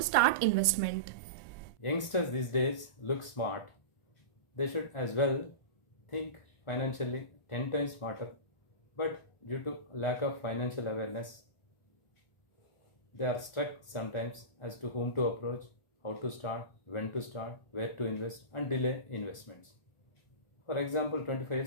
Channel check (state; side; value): late; right; 1.4 ms